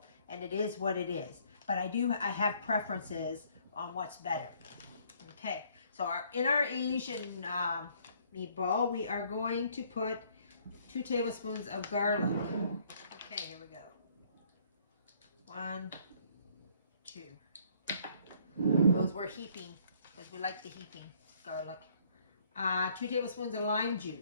and it is what it is. But I have preferences on what's better. Okay, so in our Asian meatball, we are going to put 2 tablespoons of garlic. Okay, here we go. 1, 2. Those we're heaping because we like the heaping garlic. 2 tablespoons of lime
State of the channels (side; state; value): both; inverted; correlation -0.63